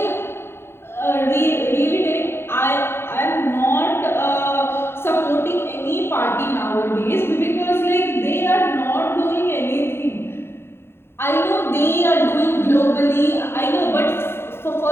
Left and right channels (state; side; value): late; right; 0.11 ms